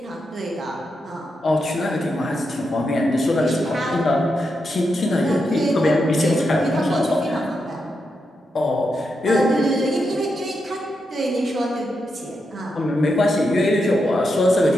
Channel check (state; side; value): normal; both; correlation 0.85